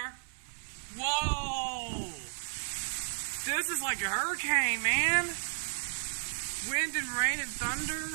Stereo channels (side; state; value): left; silent; 56 dB below the other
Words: Whoa! This is like a hurricane, man. Wind and rain and